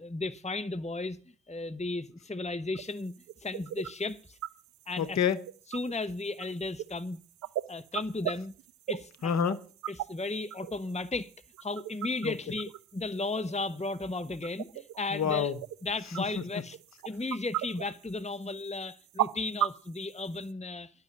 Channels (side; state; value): both; normal; correlation 0.40